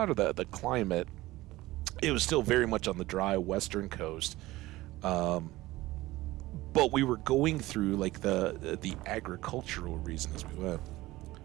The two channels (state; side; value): quieter; left; 18.1 dB